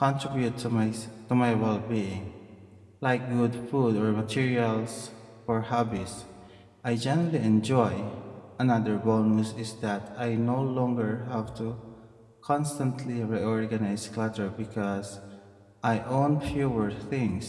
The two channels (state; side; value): identical; both; correlation 1.00